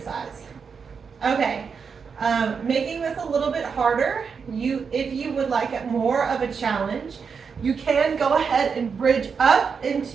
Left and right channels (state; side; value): quieter; left; 5.9 dB